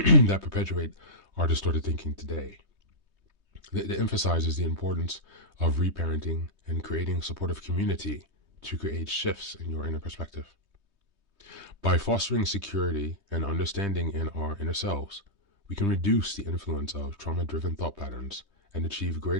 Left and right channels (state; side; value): late; left; 3.2 ms